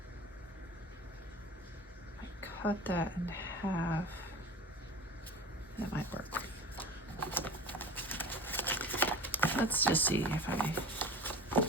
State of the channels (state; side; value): normal; both; correlation 0.35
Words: I cut that in half. That might work. Let's just see if